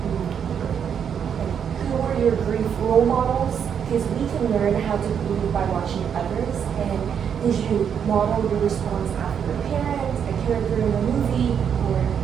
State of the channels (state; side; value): quieter; left; 7.9 dB